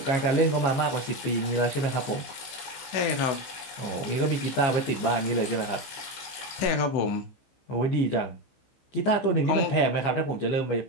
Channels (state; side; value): late; right; 15 ms